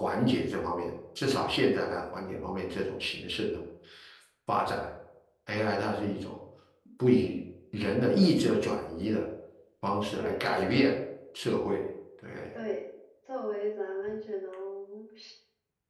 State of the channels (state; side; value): identical; both; correlation 1.00